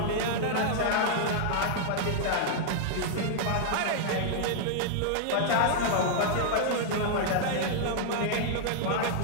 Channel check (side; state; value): both; different; correlation -0.01